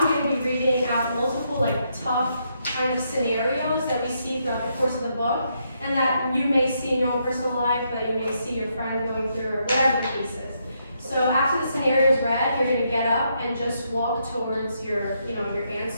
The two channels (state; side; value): inverted; both; correlation -0.77